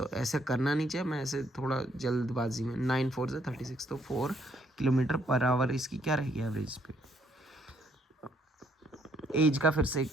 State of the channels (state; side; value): normal; both; correlation 0.69